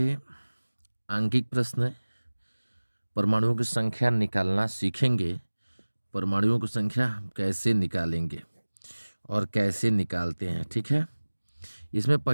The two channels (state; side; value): inverted; both; correlation -1.00